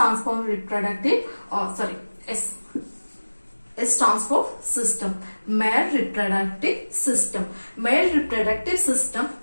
for reproductive, S stands for system. Male reproductive system. Male reproductive system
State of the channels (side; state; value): both; inverted; correlation -1.00